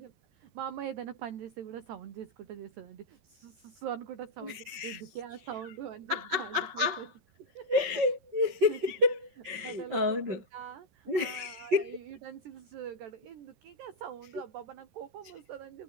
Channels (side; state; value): left; late; 11 ms